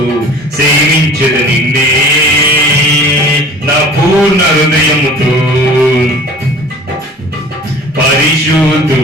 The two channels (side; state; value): both; normal; correlation 0.45